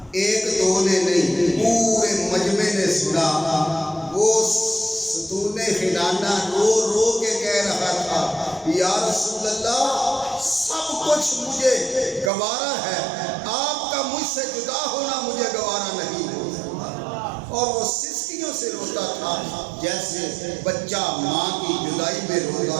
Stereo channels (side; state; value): left; drops out; at 12.3 s